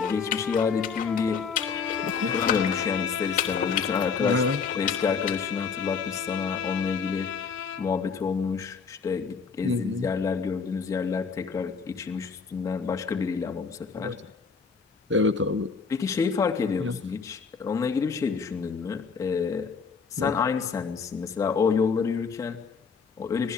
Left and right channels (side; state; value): right; quieter; 5.6 dB